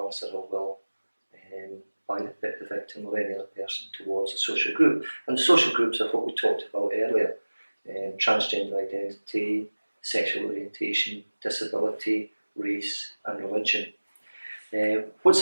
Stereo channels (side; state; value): both; inverted; correlation -1.00